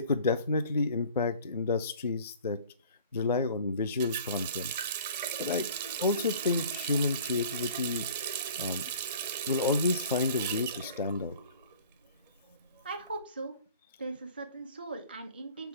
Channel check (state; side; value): inverted; both; correlation -0.47